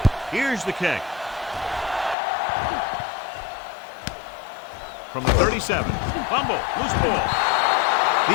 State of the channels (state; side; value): drops out; right; at 2.1 s